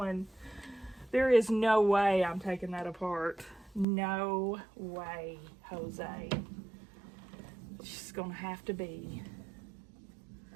There is no way I'm taking that apart. No way, Jose. It's just gonna have to be.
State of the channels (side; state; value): left; drops out; at 3.9 s